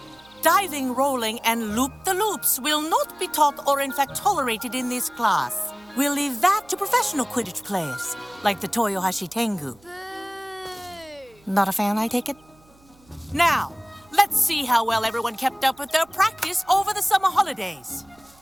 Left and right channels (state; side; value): noise; right; hum, 29 dB below the sound